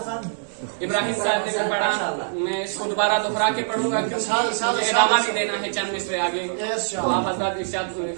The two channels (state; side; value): silent; left; 62 dB below the other